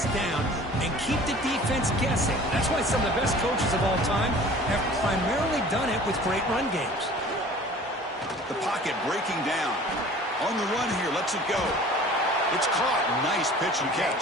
down and keep the defense guessing. That's why some of the best coaches of all time have primarily done it with great run games. The pocket breaking down. On the run here, lets it go. It's caught. Nice pitch and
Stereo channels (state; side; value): normal; both; correlation 0.46